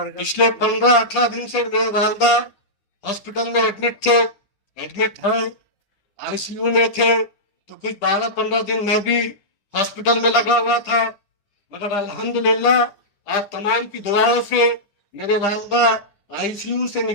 15-18 दिन से मेरे वालदा हॉस्पिटल में एडमिट है, आईसीयू में थे, तो कुछ 12-15 दिन मैं भी हॉस्पिटल में लगा हुआ था, मगर अल्हम्दुलिल्लाह आप तमाम की दुआओं से मेरे वालदा आईसीयू से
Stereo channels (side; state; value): right; late; 10 ms